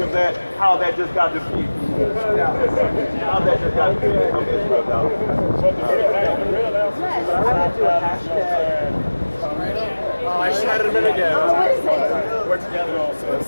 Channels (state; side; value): inverted; both; correlation -1.00